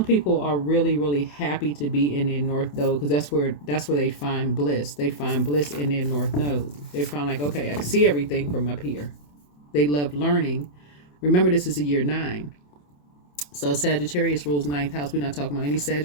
people are really, really happy to be in their North Node because that's where they find bliss. They find bliss in their North Node. They find like, okay, I can see everything from up here. They love learning. Remember, this is a year 9. So Sagittarius rules 9th house. We're not talking about any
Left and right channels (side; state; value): right; late; 27 ms